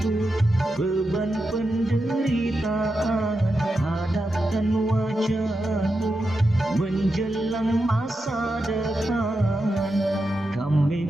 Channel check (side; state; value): both; normal; correlation 0.88